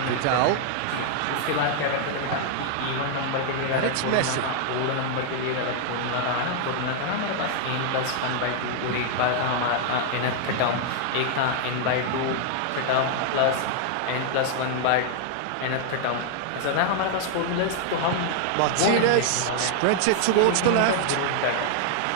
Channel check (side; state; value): both; different; correlation 0.00